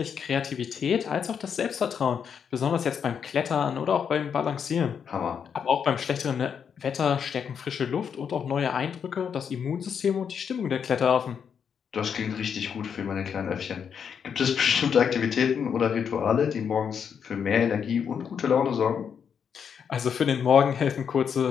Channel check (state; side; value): quieter; right; 7.3 dB